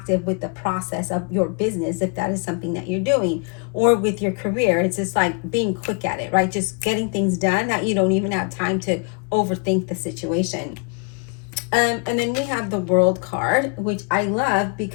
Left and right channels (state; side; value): quieter; right; 36.8 dB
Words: with the process of your business, if that is something that you're doing, or with your career. It's just like being quick at it, right? Just getting things done that you don't even have time to overthink the situation. And then we have the World card, which I love